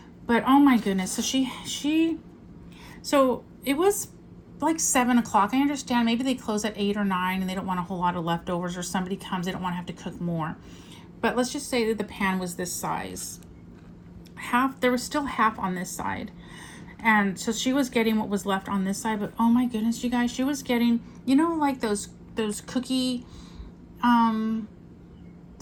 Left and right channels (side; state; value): both; identical; correlation 1.00